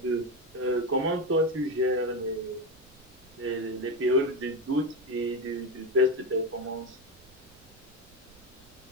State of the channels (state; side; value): noise; right; rumble, 26 dB below the sound